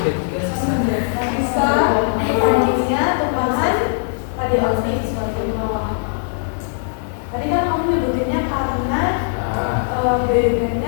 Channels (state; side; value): silent; right; digital silence